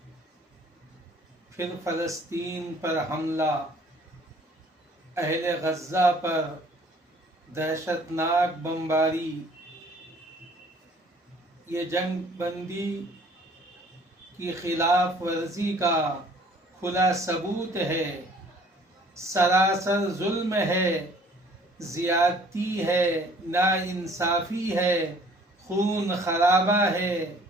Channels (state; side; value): normal; both; correlation 0.55